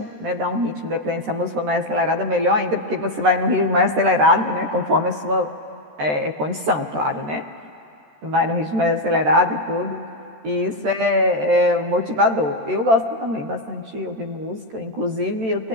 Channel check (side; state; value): left; late; 13 ms